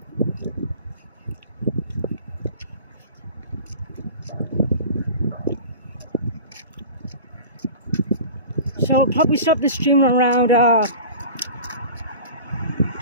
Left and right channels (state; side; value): inverted; both; correlation -0.37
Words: So I'll probably stop the stream around